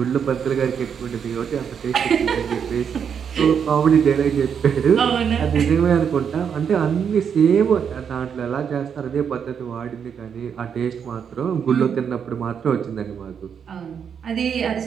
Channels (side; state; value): left; quieter; 7.4 dB